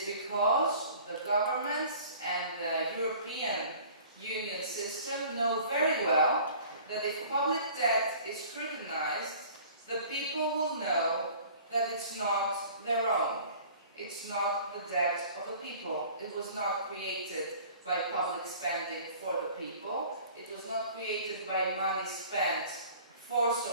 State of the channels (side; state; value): both; inverted; correlation -0.48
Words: because the governments and the European Union system know very well that if public debt is scrutinized, the people will know that it's not their own. It's not the debt of the people. It was not created by public spending for the people. It was not created by money spent for